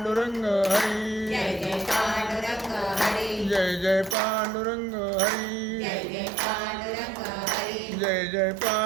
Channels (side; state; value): left; drops out; at 4.2 s